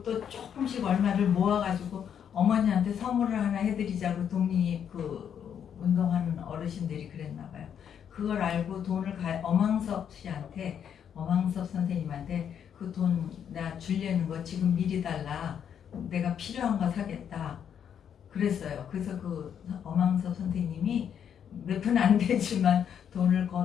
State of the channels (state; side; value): quieter; right; 8.4 dB